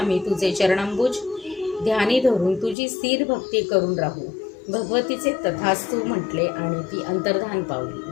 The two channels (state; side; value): drops out; right; at 2.8 s